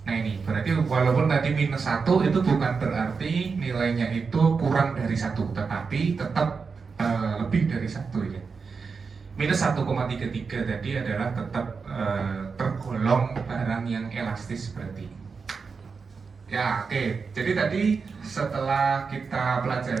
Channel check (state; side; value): quieter; left; 5.1 dB